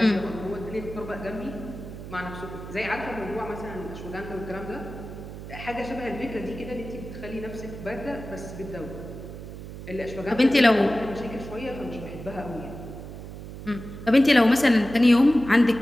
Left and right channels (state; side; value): noise; right; hum, 11 dB below the sound